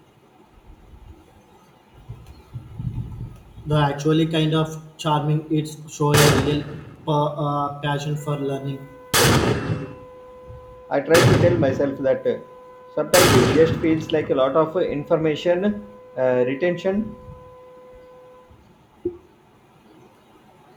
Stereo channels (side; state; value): both; identical; correlation 1.00